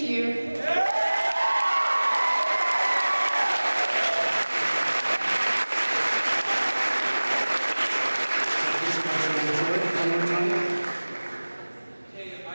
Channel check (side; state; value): both; inverted; correlation -1.00